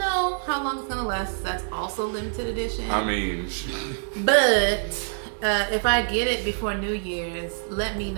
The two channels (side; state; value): left; silent; digital silence